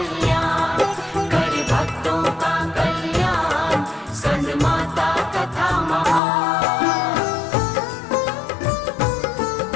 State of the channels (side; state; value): right; drops out; at 6.2 s